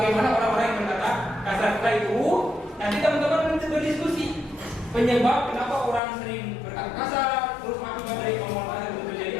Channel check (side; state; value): right; drops out; at 6.0 s